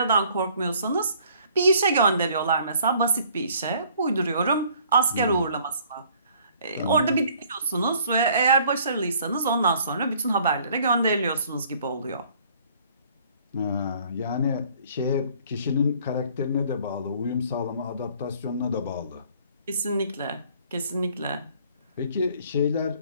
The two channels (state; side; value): inverted; both; correlation -0.58